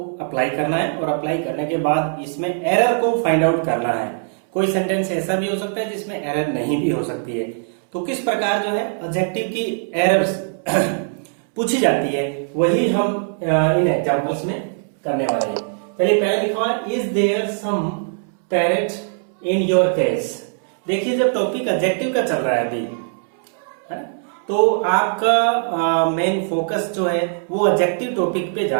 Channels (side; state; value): left; silent; 65 dB below the other